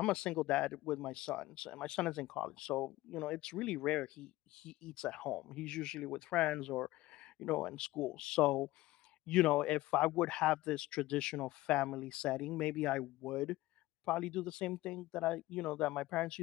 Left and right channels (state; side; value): quieter; right; 17.9 dB